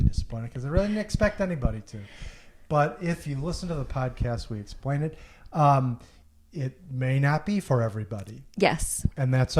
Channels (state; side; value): identical; both; correlation 1.00